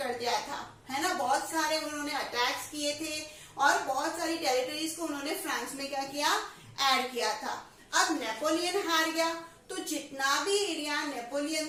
दिया था, है ना, बहुत सारे उन्होंने अटैक्स किए थे और बहुत सारी टेरिटरीज को उन्होंने फ्रांस में क्या किया, ऐड किया था। अब नेपोलियन हार गया तो जितना भी एरिया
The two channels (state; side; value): identical; both; correlation 1.00